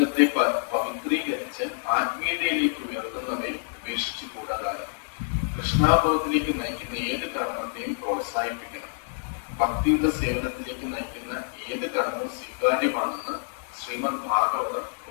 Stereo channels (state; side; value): silent; right; digital silence